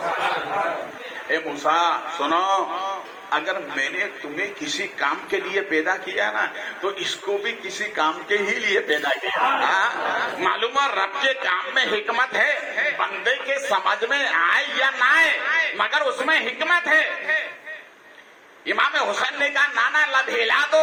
اے موسیٰ سنو، اگر میں نے تمہیں کسی کام کے لیے پیدا کیا نا تو اس کو بھی کسی کام کے ہی لیے پیدا کیا۔ معلوم ہے رب کے کام میں حکمت ہے، بندے کے سمجھ میں آئے یا نہ آئے مگر اس میں حکمت ہے۔ امام حسین نے کہا نانا لب ہلا دو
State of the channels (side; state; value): both; identical; correlation 1.00